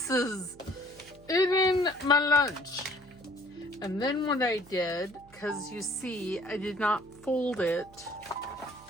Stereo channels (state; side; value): noise; right; hum, 24 dB below the sound